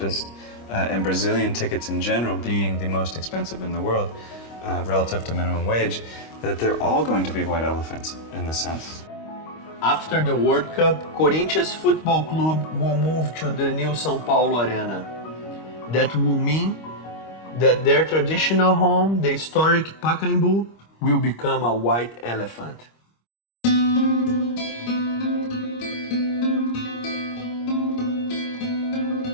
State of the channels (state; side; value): late; right; 25 ms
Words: and Brazilian tickets in general being the most expensive in the world relative to minimum wage, that they're all going to be white elephants in this sense. After the World Cup, Corinthians Football Club will move to the new São Paulo Arena. That will mean that their traditional home, the historic Pacaembu, will become a white elephant.